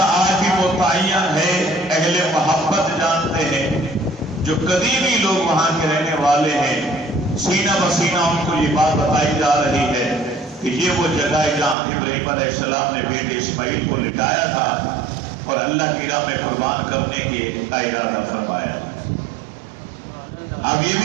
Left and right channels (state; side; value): drops out; left; at 11.8 s